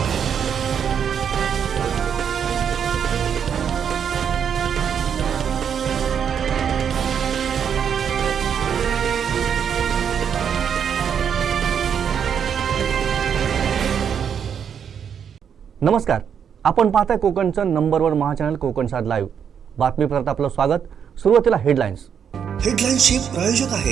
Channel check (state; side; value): quieter; left; 7.8 dB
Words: नमस्कार, आपण पाहताय कोकणचं नंबर 1 महाचॅनल कोकण सात लाईव्ह। बातमीपत्रात आपलं स्वागत। सुरुवातीला हेडलाईन्स। हेडलाईन्सचे प्रायोजक